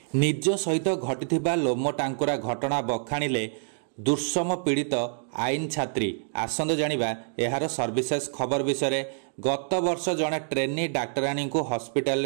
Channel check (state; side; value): silent; left; digital silence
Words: निज सहित घटिथिबा लोम टांकुरा घटना बखाणिले दुर्सम पीड़ित आईन छात्री। आसंद जानिबा एहार सर्विसेस खबर विषय। गत वर्ष जड़े ट्रेनी डाक्तराणी को हॉस्पिटल